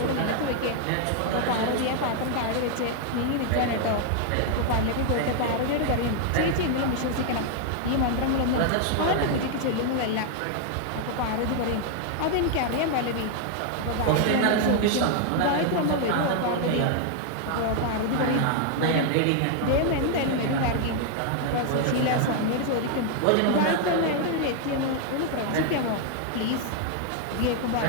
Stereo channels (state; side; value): different; both; correlation 0.00